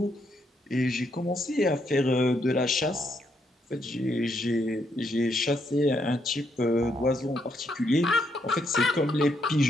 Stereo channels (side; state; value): both; normal; correlation 0.76